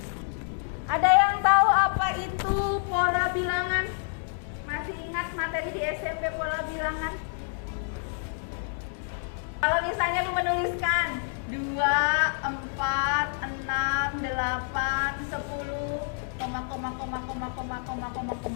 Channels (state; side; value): silent; right; digital silence